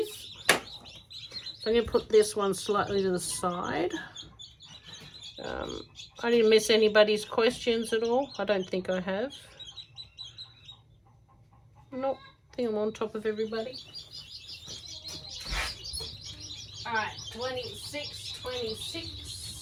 So I'm going to put this one slightly to the side. I didn't miss anybody's questions at all. I don't think I have. Nope, I think I'm on top of everybody. All right, 26.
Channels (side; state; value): both; identical; correlation 1.00